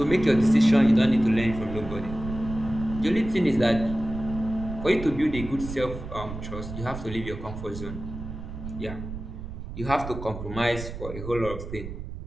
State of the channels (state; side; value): noise; right; rumble, 9 dB below the sound